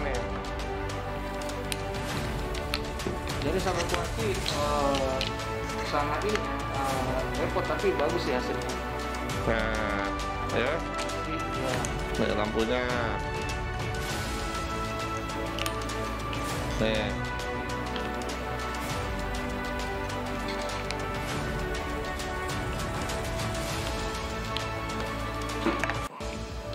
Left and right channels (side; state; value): both; identical; correlation 1.00